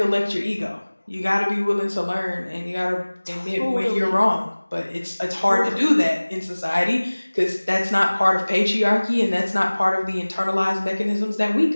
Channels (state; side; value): inverted; both; correlation -1.00